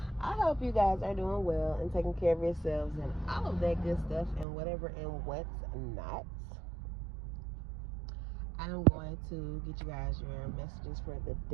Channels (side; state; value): left; drops out; at 4.5 s